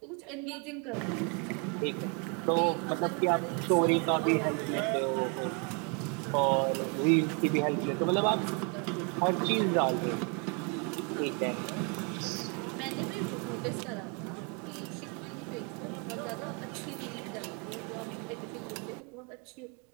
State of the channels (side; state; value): left; quieter; 35.2 dB